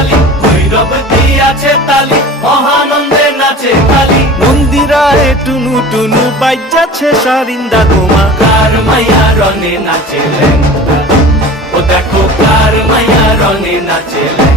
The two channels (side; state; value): both; normal; correlation 0.38